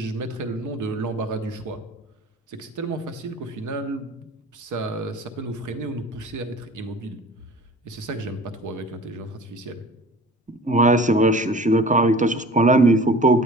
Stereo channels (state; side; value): normal; both; correlation 0.44